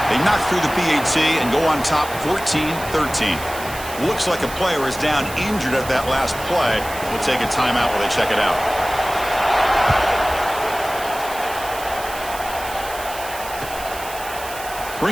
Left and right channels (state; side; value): noise; right; hiss, 13 dB below the sound